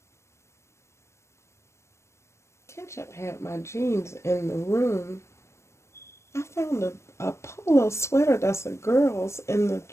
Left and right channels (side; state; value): right; late; 0.13 ms